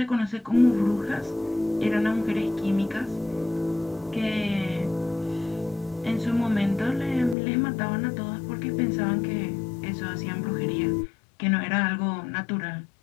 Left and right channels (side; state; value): right; drops out; at 7.4 s